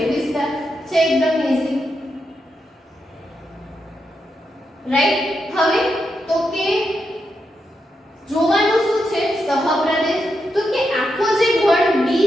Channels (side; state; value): both; normal; correlation 0.85